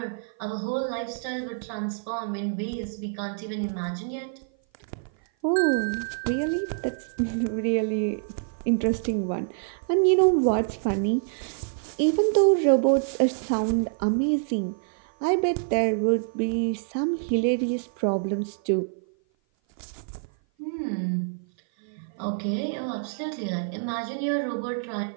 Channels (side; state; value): left; silent; 56 dB below the other